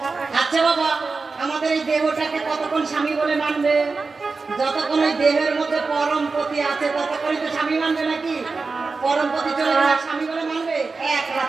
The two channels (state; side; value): quieter; left; 4.2 dB